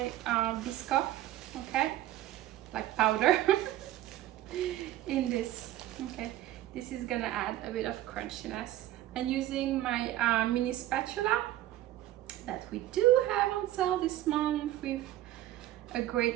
Biscoff, okay, like powder, in this. Okay, this is gonna add a bit of crunchiness. And using my mini spatula that we do have on sale this month with a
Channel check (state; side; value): quieter; left; 14.3 dB